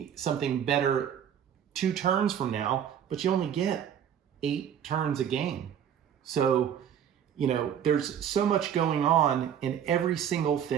something better 2 turns from now, but you only get 8 turns a game. So, there's so much going on, and every single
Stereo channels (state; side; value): quieter; left; 9.0 dB